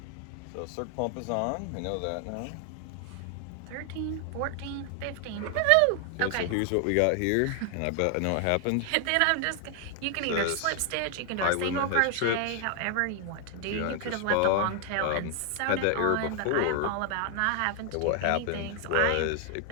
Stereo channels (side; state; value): both; different; correlation 0.00